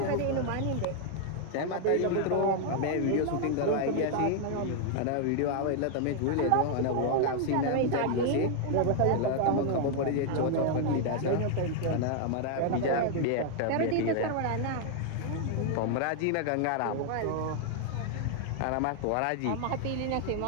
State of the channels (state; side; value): different; both; correlation 0.00